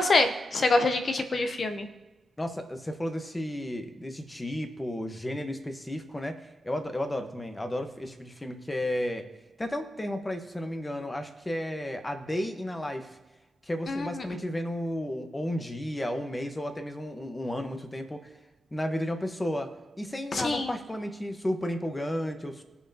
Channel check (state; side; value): normal; both; correlation 0.90